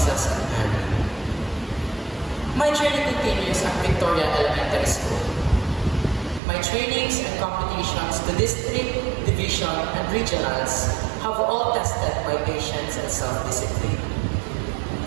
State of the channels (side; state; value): left; drops out; at 6.4 s